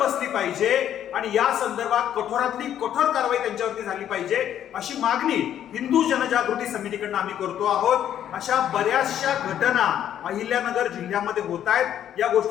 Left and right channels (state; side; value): quieter; right; 10.5 dB